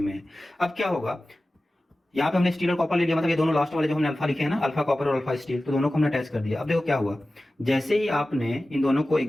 है। अब क्या होगा, यहाँ पे हमने स्टील और कॉपर ले लिया, मतलब ये दोनों लास्ट वाले जो हमने अल्फा लिखे हैं ना, अल्फा कॉपर और अल्फा स्टील, तो दोनों को हमने अटैच कर दिया। अब देखो क्या हुआ, जैसे ही आपने इन दोनों को एक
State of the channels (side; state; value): both; normal; correlation 0.96